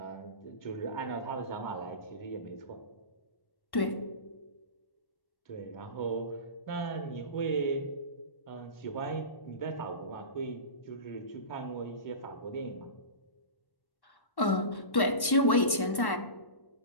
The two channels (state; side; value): late; right; 1.1 ms